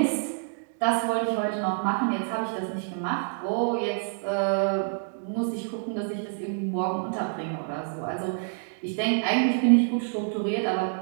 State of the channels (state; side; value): silent; left; digital silence